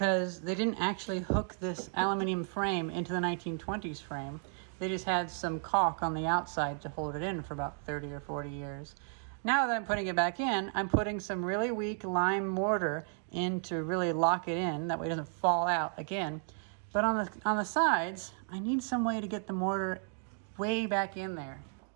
they didn't actually hook this aluminum frame into the 1920s frame. They just had some caulk on the outside to hold it in for about 30 or 40 years. Now that I'm putting it back in, I'm putting some really weak lime mortar in to really lock it in. That way it doesn't fall out again. But on the sides, I need some way to get the mortar way back in there.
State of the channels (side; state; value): left; silent; 55 dB below the other